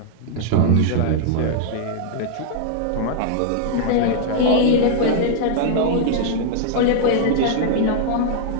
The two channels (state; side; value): different; both; correlation -0.01